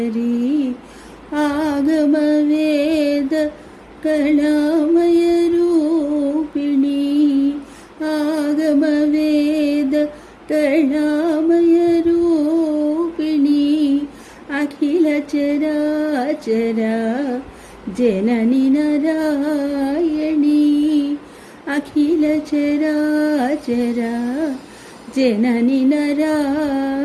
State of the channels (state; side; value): identical; both; correlation 1.00